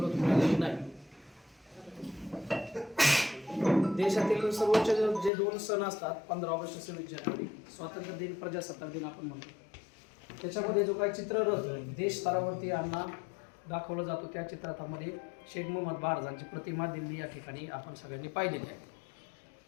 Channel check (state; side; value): drops out; right; at 5.3 s